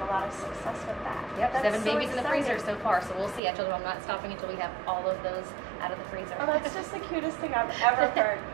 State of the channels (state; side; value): drops out; left; at 3.4 s